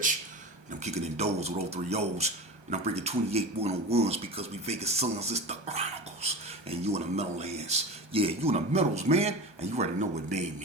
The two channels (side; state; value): left; late; 1.2 ms